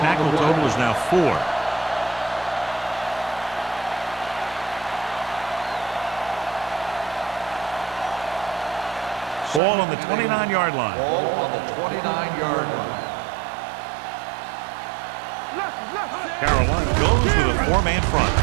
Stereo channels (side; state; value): left; drops out; at 9.6 s